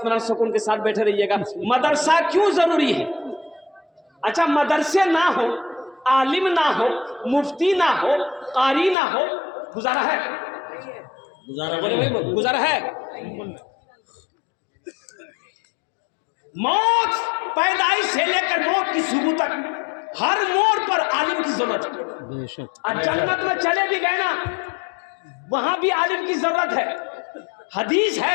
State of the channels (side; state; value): right; drops out; at 9.0 s